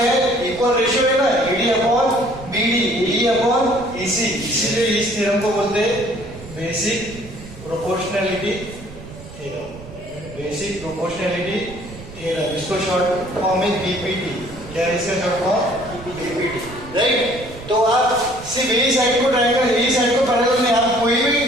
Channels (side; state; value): right; noise; rumble, 15 dB below the sound